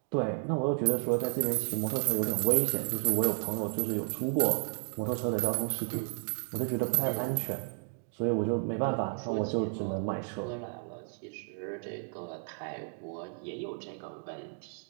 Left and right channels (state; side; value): silent; left; 56 dB below the other